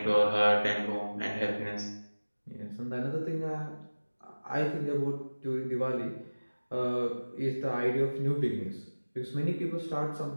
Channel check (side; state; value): both; inverted; correlation -1.00